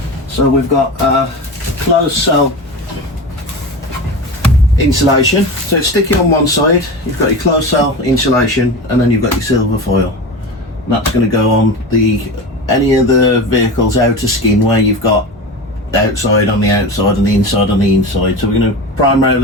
So we've got closed cell insulation. So it's sticky on one side. You've got your closed cell insulation, and then you've got your silver foil. And that's going to go on any of the vehicle's outer skin where you've got outside on the outside and the inside on the inside. So we're going to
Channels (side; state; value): both; normal; correlation 0.27